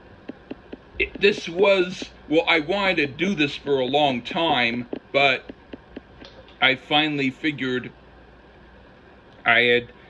this was, well, I wanted to do this for a long time, but I finally figured, I had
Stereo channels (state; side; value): identical; both; correlation 1.00